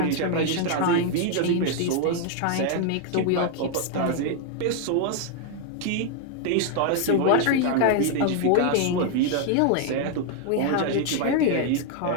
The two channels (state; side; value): different; both; correlation 0.00